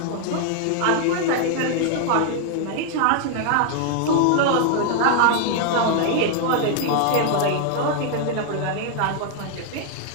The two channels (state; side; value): different; both; correlation 0.00